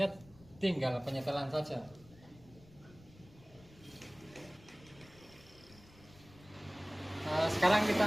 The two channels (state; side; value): noise; left; rumble, 23 dB below the sound